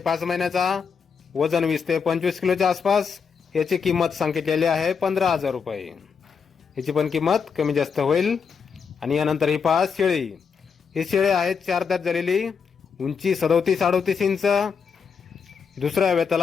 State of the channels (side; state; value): right; quieter; 6.1 dB